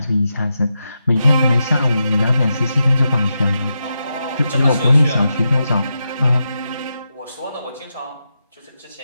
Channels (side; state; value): both; inverted; correlation -0.87